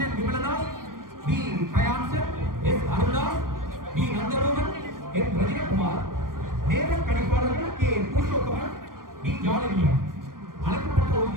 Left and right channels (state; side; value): late; left; 0.91 ms